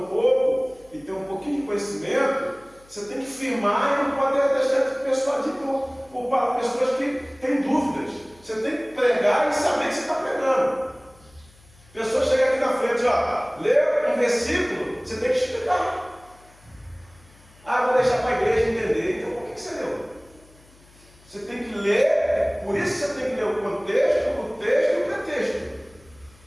pouco e tem um pouquinho de conhecimento, você tem que firmar e não pode deixar de persuadir por pessoas que têm dúvidas. Você tem que pregar e saber que você está pregando. Pessoa chega aqui na frente, lê um versículo, você tem que explicar. Vou deixar para a igreja entender. Então, por que você leu? Você tem que ler, por isso você tem que ler o contexto, o texto e o pretexto.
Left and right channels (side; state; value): left; noise; hum, 27 dB below the sound